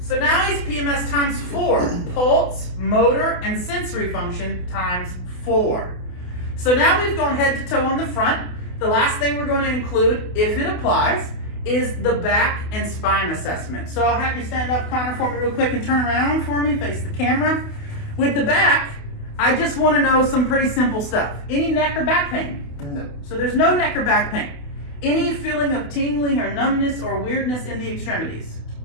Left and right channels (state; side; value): late; right; 28 ms